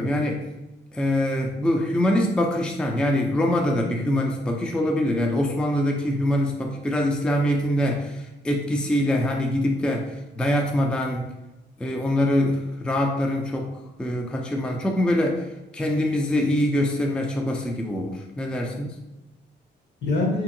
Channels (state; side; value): normal; both; correlation 0.76